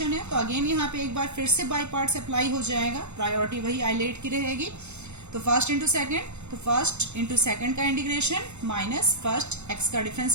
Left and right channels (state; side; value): late; left; 0.82 ms